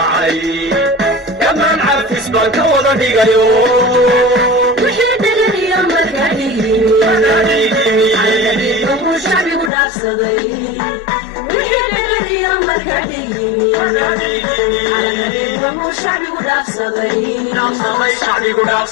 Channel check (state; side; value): drops out; right; at 9.7 s